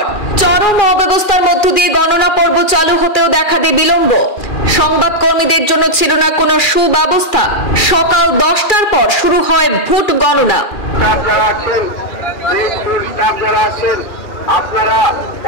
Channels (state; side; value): late; right; 2.4 ms